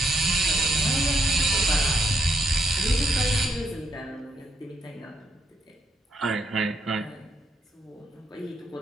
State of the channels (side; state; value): both; normal; correlation 0.77